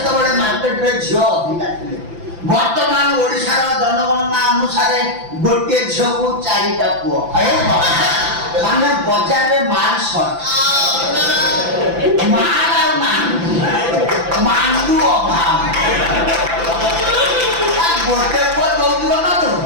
ମାର୍କେଟରେ ଝିଅ ଅଧିକା ଥିଲେ। ବର୍ତ୍ତମାନ ଓଡ଼ିଶାର ଜନଗଣନା ଅନୁସାରେ ଗୋଟିଏ ଝିଅକୁ 4ଟା ପୁଅ ମାନେ ବଜାରରେ ମାଲ ସର୍ଟ ମାଲ ଆଉ ମାଣ୍ଡୁ ଅଭାବ ଗୋଟେ ପୁଅ ଯୌତୁକ ନଦେଉ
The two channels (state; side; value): late; left; 5.9 ms